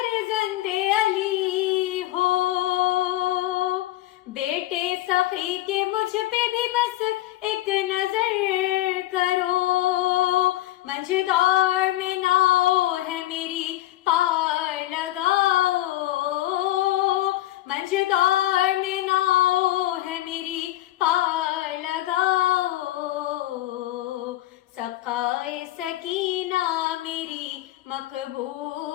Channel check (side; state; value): right; quieter; 15.6 dB